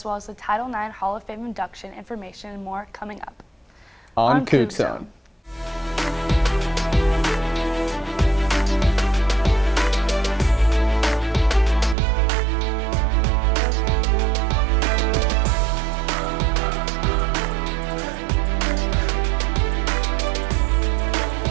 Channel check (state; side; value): drops out; left; at 12.0 s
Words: the Title IX Hall of Fame induction information and more coming up. On CougZone.